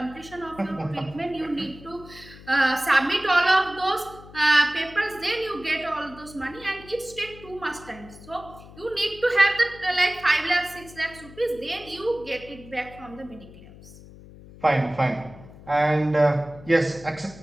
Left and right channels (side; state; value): left; noise; hum, 19 dB below the sound